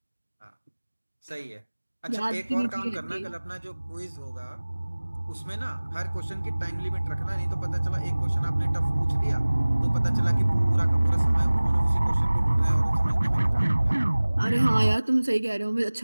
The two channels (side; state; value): both; inverted; correlation -1.00